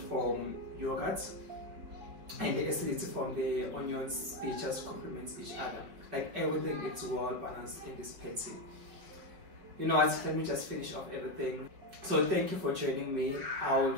from yogurt and the acidity from the onions, they just complement each other. Like everything, it's well balanced in this patty. You know what, let me just finish off everything. So thank you for joining me. I'll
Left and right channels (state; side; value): late; left; 5.2 ms